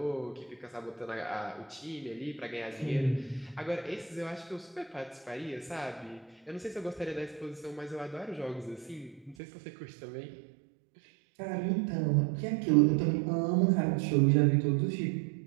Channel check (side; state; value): left; drops out; at 9.3 s